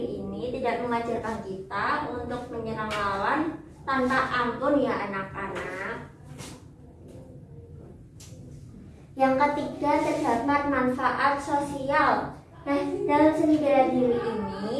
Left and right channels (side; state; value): both; identical; correlation 1.00